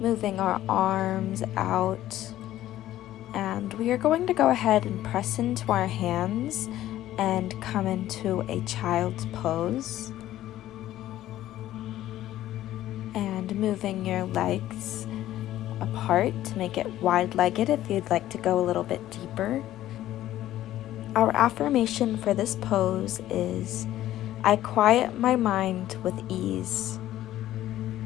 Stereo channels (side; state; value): right; quieter; 13.7 dB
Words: our arms out, and we are going to go ahead and press into our hands and come into a child's pose, and moving your legs apart to make it wide-legged if you'd like to go a little bit deeper. Our affirmation for this pose is, I quiet my mind with ease.